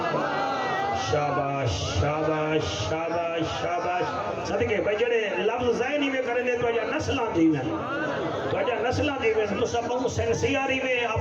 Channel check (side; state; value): both; identical; correlation 1.00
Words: شاباش شاباش شاباش شاباش صدقے بھائی جڑے لفظ ذہنی میں کریں دے تو اجا نسلان دی میں تو اجا نسلان دی میں تو سب بہو سنسیاری میں